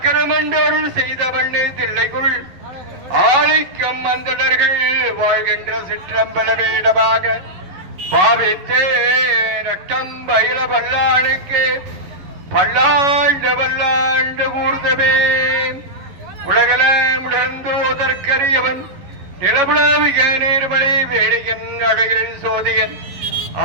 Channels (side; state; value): left; late; 11 ms